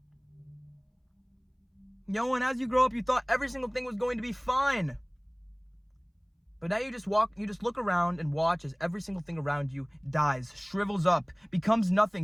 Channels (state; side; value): identical; both; correlation 1.00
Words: And as you grow up, you thought every single thing was going to be fine. But now you just look around and watch as every single thing around you dies, shrivels up, becomes